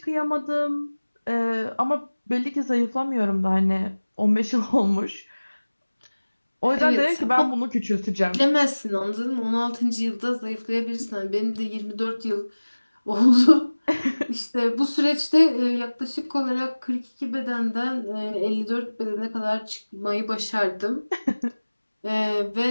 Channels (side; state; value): both; inverted; correlation -1.00